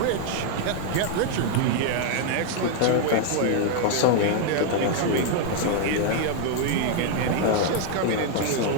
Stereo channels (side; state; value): both; different; correlation 0.00